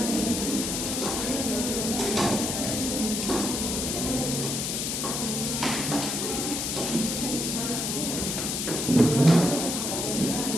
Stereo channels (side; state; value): left; noise; hiss, 1 dB below the sound